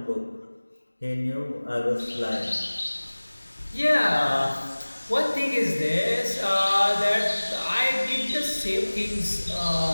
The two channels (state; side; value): inverted; both; correlation -1.00